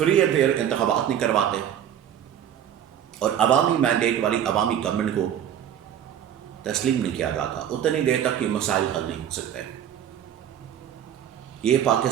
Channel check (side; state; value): left; quieter; 10.0 dB